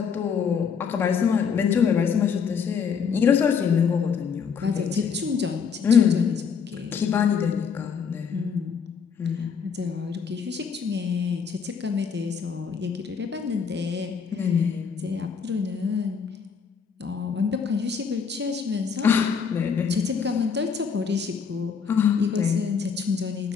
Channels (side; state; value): right; quieter; 6.4 dB